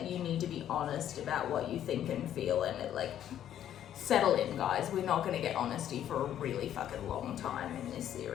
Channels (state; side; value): quieter; right; 10.8 dB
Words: you need to be honest about what you think and feel, and settle in, guys. We're not going to get honesty for a really fucking long time in this